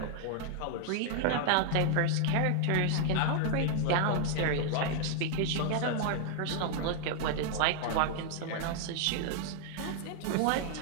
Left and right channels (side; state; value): both; different; correlation 0.00